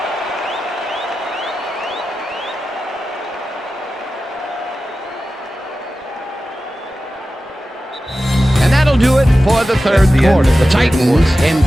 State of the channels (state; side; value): normal; both; correlation 0.94